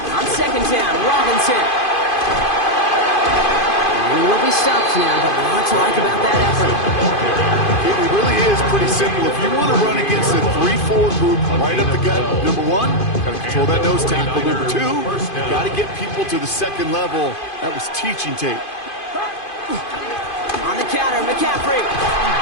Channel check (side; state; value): right; late; 2.5 ms